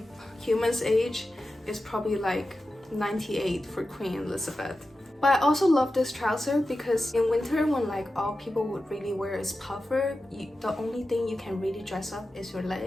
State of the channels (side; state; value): both; normal; correlation 0.93